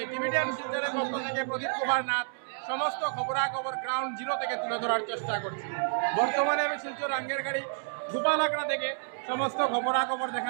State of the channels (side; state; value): left; silent; digital silence